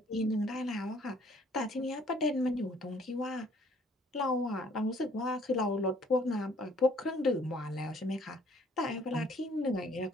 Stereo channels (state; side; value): normal; both; correlation 0.60